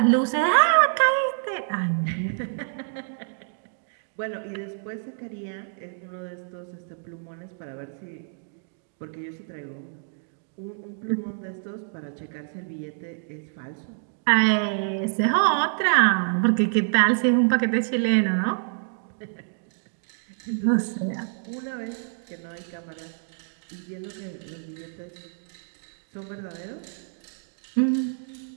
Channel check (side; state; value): left; silent; digital silence